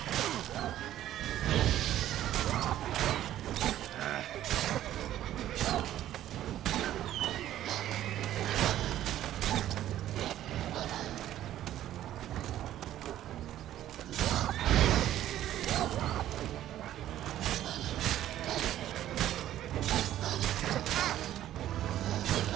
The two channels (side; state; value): left; quieter; 12.6 dB